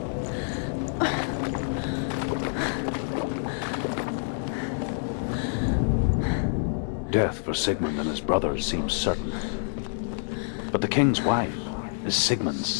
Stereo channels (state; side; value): silent; right; digital silence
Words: Death for Sigmund and his brothers seems certain. But the king's wife is Sigmund's